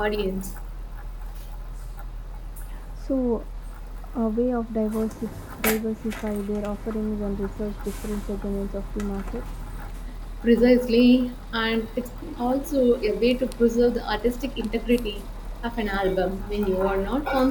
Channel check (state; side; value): identical; both; correlation 1.00